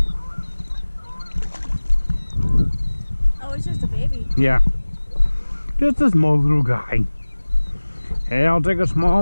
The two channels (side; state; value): both; inverted; correlation -1.00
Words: Oh, it's just a baby. Yeah. Just a small little guy. Hey, I'll take a